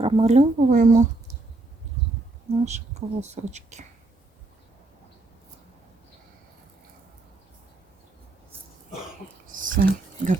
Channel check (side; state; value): left; quieter; 3.0 dB